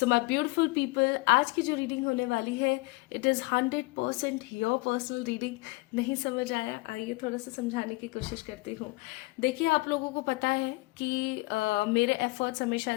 माय ब्यूटीफुल पीपल, आज की जो रीडिंग होने वाली है it is 100% your personal reading. नहीं समझ आया? आइए थोड़ा सा समझाने की कोशिश करती हूँ। देखिए, आप लोगों को पता है कि मेरे एफर्ट्स हमेशा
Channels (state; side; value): quieter; right; 24.1 dB